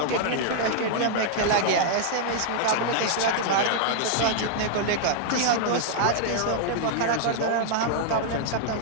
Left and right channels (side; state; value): both; different; correlation -0.01